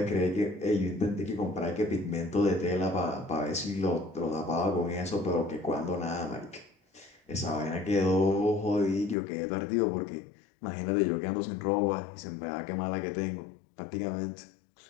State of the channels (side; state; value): right; drops out; at 9.2 s